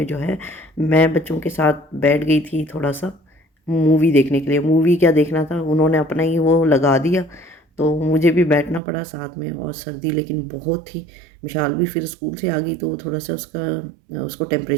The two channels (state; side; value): drops out; left; at 8.8 s